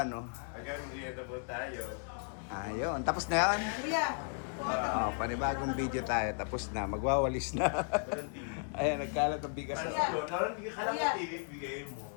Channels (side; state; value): right; silent; 54 dB below the other